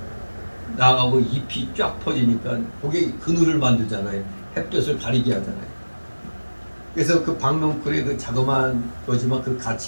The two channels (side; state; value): both; inverted; correlation -1.00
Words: 나가고 잎이 쫙 퍼지니까 그게 그늘을 만들잖아요. 햇볕을 가리게 하잖아요. 그래서 그 박농쿨의 그 자그마한 거지만 그